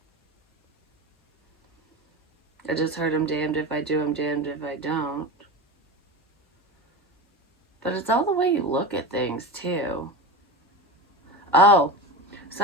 I just heard I'm damned if I do, I'm damned if I don't. But it's all the way you look at things, too. Oh,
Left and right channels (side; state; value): both; normal; correlation 0.25